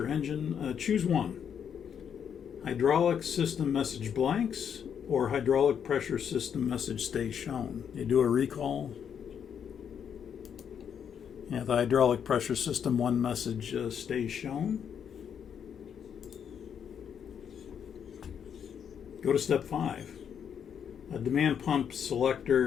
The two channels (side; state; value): right; quieter; 8.0 dB